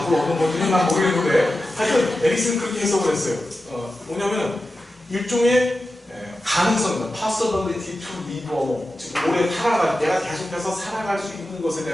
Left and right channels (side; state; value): both; normal; correlation 0.92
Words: 얻는 건지는 난 모르겠는데 하여튼 에릭슨은 그렇게 해석을 했어요. 뭐냐면 일종의 가능성이다. possibility to live on. 즉 오래 살아갈 내가 계속해서 살아갈 수 있는 것에